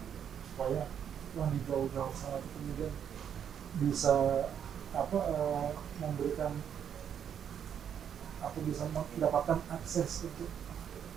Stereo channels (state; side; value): quieter; left; 8.6 dB